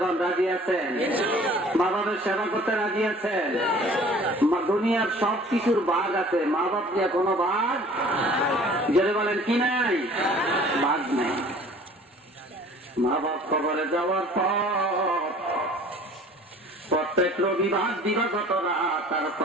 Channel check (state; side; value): normal; both; correlation 0.50